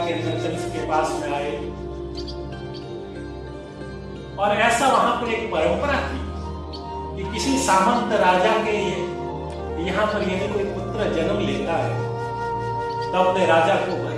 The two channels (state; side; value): identical; both; correlation 1.00